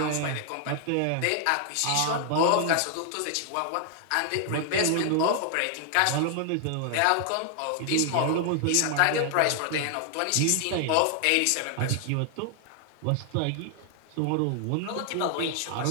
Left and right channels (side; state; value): both; different; correlation 0.00